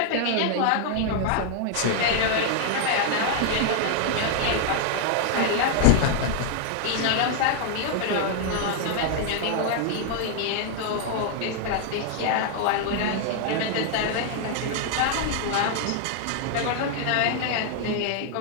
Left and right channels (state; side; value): different; both; correlation 0.00